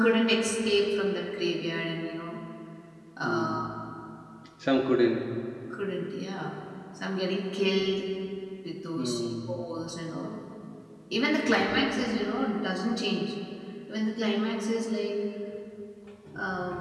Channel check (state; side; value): identical; both; correlation 1.00